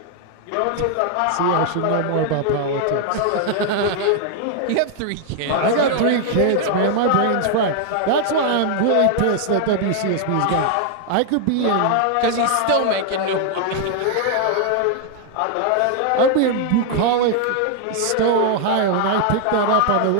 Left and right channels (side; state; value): both; different; correlation 0.00